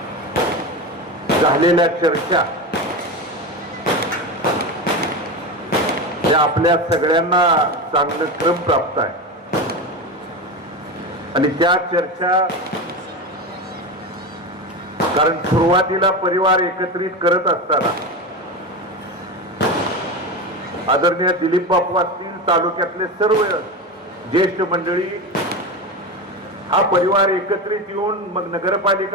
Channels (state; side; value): normal; both; correlation 0.21